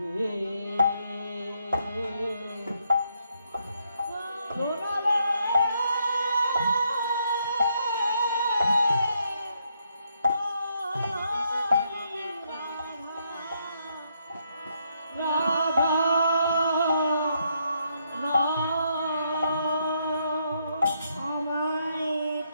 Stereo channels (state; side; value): inverted; both; correlation -0.76